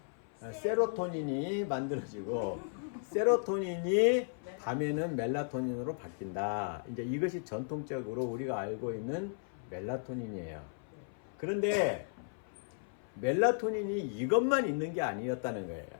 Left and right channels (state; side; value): silent; right; 54 dB below the other